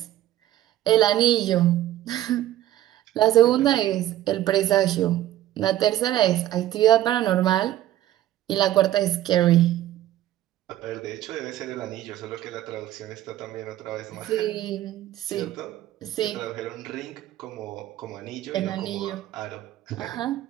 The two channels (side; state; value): left; quieter; 13.7 dB